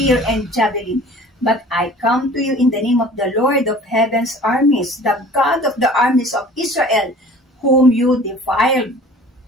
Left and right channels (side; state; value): both; normal; correlation 0.46